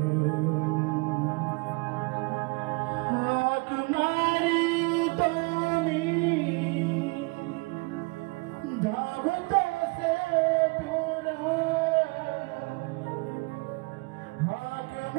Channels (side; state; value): left; quieter; 29.1 dB